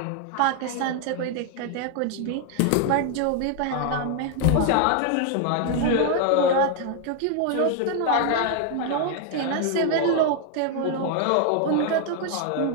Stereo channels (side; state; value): both; different; correlation 0.00